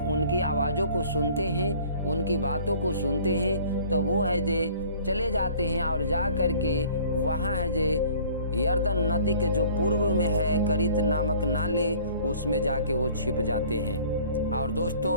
आवाज़ों को सुनते हैं, उनकी बातों को सुनते हैं, तो वो है जे चले जाते हैं और जा कर के वहाँ है जे यरदन नदी के जो पूर्व में है करित नामक नाले, उसमें जाके वो छिप जाते हैं। और दोस्तों,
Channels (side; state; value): both; inverted; correlation -0.51